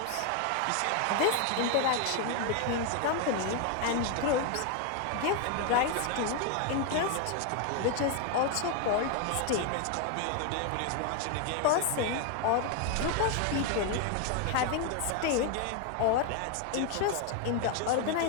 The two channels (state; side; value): different; both; correlation 0.01